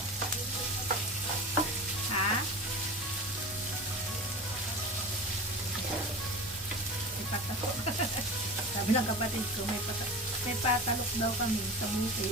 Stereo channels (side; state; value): both; normal; correlation 0.32